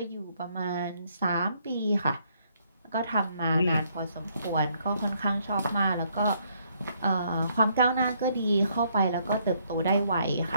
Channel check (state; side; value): inverted; both; correlation -0.70